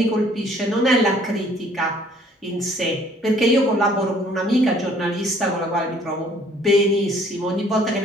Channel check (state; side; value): normal; both; correlation 0.58